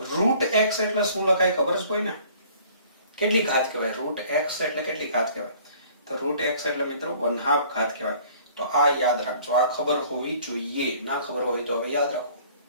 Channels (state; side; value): inverted; both; correlation -0.53